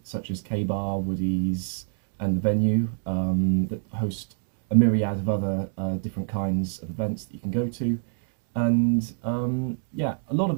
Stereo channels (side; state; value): left; silent; digital silence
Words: such as K-Bar, Woody's and the Venue that host a myriad of other different kinds of events that you can go to. And yeah, a lot of